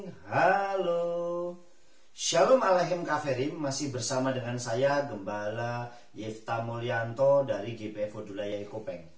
halo. Shalom Aleichem Kaferim, masih bersama dengan saya Gembala Yefta Mulyanto dari GPF Odulaya Ikopeng.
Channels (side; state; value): both; identical; correlation 1.00